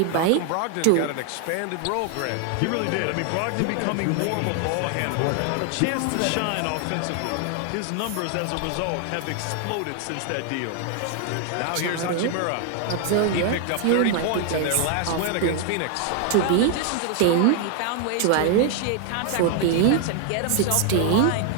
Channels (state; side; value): different; both; correlation 0.00